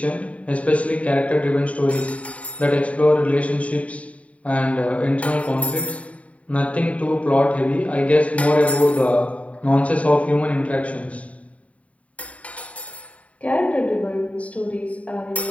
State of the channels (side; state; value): right; late; 0.066 ms